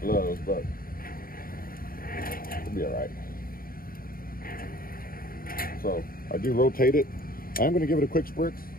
but it'll be all right. So I do rotate it. I am gonna give it a quick spritz.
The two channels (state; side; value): late; right; 0.42 ms